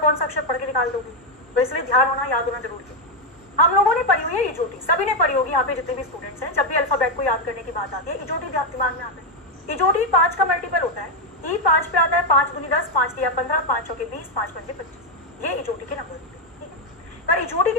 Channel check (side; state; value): both; normal; correlation 0.04